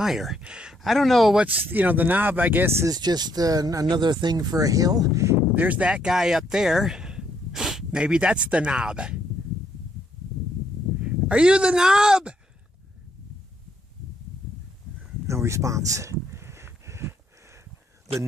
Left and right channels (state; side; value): normal; both; correlation 0.72